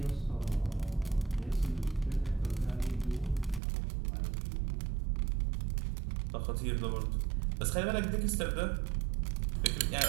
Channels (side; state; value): left; drops out; at 3.6 s